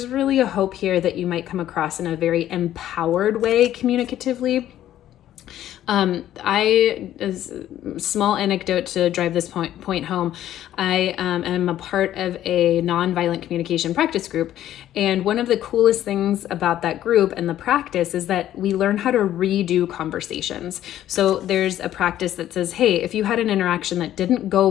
really a hope here that you might come across in a very empowered way communicatively. Small anecdote to drive this point home. I am a part of a nonviolent communication practice group. And one of the coolest things about that group and the practice is that we learn how to redo conversations. So there's a practice that says, hey, if you had an interaction that didn't go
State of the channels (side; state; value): right; quieter; 12.3 dB